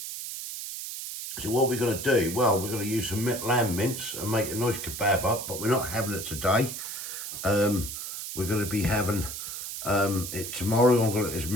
So what we're going to do, well, we're going to use some lamb mince and make a nice kebab up, but we're not having it today. We're going to be having it tomorrow. I'm going to let this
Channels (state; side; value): noise; right; hiss, 7 dB below the sound